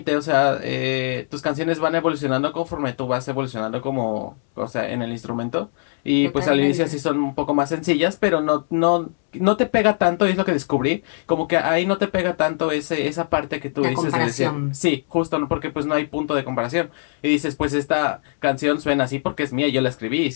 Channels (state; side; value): silent; right; 65 dB below the other